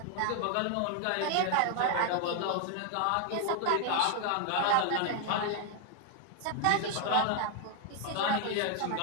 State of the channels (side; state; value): both; different; correlation 0.00